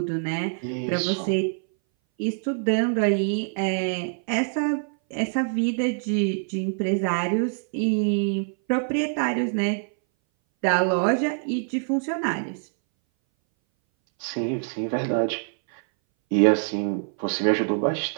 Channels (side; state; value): left; silent; 60 dB below the other